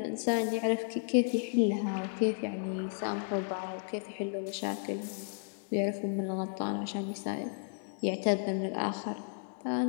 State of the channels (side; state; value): right; silent; 56 dB below the other